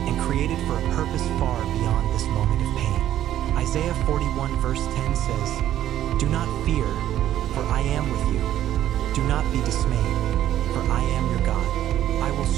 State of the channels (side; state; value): left; quieter; 12.1 dB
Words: and created for a purpose far beyond this moment of pain. Isaiah 41 verse 10 says, "Do not fear, for I am with you. Do not be dismayed, for I am your God. I will